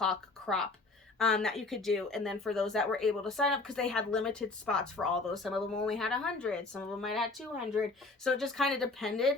crop that you could do. And then for those that were able to sign up, because they had limited spots for all those, some of them only had 100, some of them might have had 200. So it just kind of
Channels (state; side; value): quieter; right; 3.5 dB